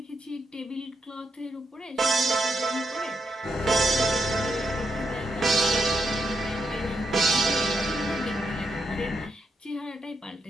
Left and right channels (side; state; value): both; normal; correlation 0.81